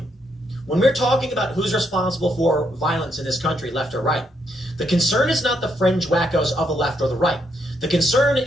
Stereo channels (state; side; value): normal; both; correlation 0.76